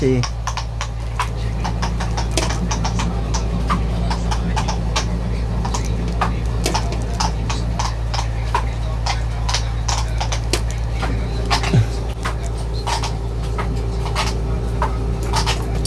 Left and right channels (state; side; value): identical; both; correlation 1.00